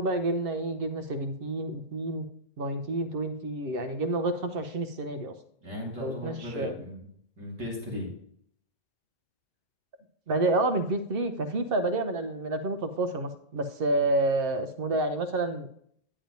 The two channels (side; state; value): left; late; 2.7 ms